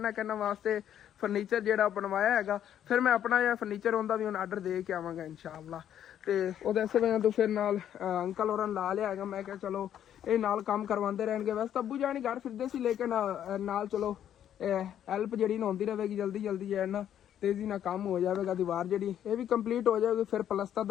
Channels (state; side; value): quieter; right; 10.3 dB